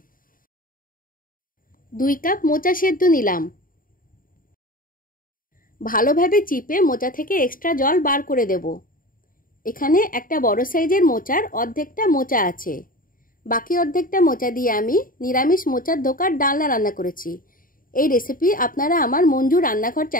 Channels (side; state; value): right; late; 0.40 ms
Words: 2 কাপ মোচা সেদ্ধ নিলাম। ভালোভাবে চিপে মোচা থেকে এক্সট্রা জল বার করে দেব। এখানে একটা বড় সাইজের মোচার অর্ধেকটা মোচা আছে। বাকি অর্ধেকটা মোচা দিয়ে আমি নিরামিষ মোচার ধোকার ডালনা রান্না করেছি। এই রেসিপি আপনারা আমার মঞ্জু রান্নাঘর